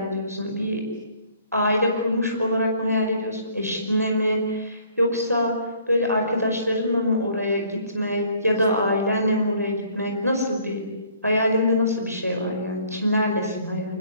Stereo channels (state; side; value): inverted; both; correlation -0.58